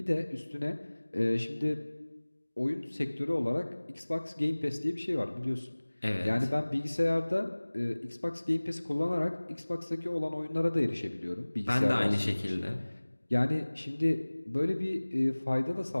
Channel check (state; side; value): inverted; both; correlation -1.00